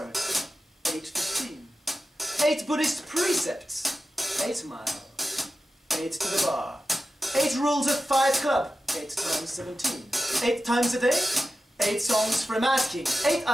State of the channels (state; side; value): normal; both; correlation 0.93